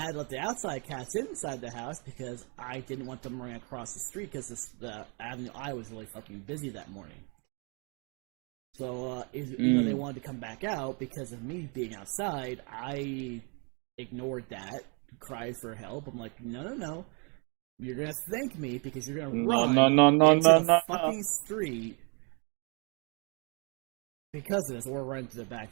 to let the outside cats inside the house because I didn't want them running across the street because the Avenue I was really fucking busy that morning. So, you know, they wanted to come back out because of me being outside. I ignored that, cried for help. I'm like, no. You're going to thank me because you're going to run into the fucking street because of this, or run into the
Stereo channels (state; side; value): quieter; left; 34.8 dB